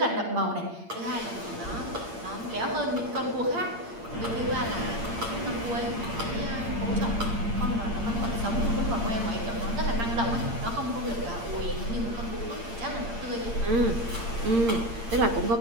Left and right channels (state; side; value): late; left; 8.7 ms